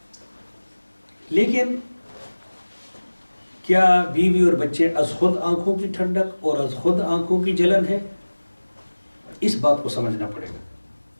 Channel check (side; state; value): both; inverted; correlation -1.00